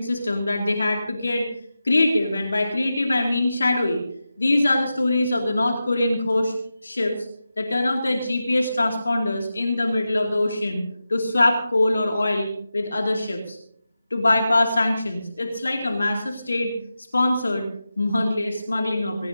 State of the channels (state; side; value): inverted; both; correlation -0.92